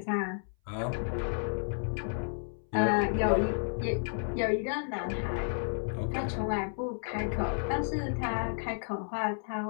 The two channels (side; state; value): right; silent; 56 dB below the other